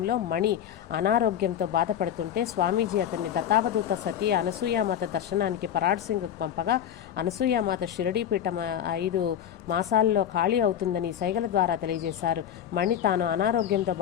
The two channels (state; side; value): quieter; right; 9.9 dB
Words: మణి అనారోగ్యంతో బాధపడుతుంటే స్వామీజీ అతన్ని దత్తావధూత సతీ అనసూయామాత దర్శనానికి పరాడ్ సింగ్ పంపగా అనసూయామాత షిరిడీ పీఠం 5 మాసాల్లో ఖాళీ అవుతుందని సైగల ద్వారా తెలియజేశారు. మణి తాను అనారోగ్యంతో